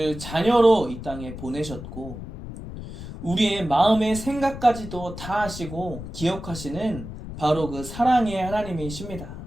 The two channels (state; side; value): noise; left; rumble, 10 dB below the sound